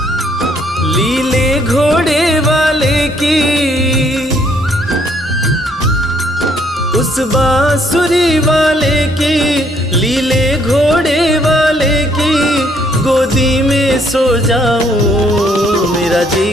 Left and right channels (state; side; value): normal; both; correlation 0.67